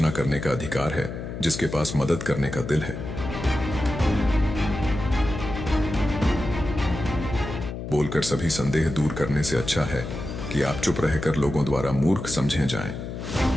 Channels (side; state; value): left; noise; hum, 7 dB below the sound